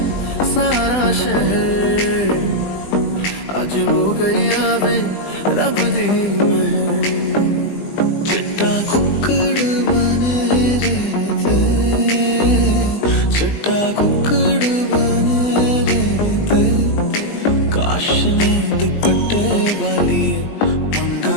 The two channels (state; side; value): late; right; 20 ms